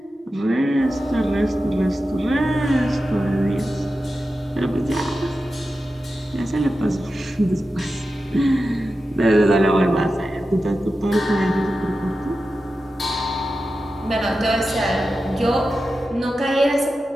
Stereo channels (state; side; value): normal; both; correlation 0.92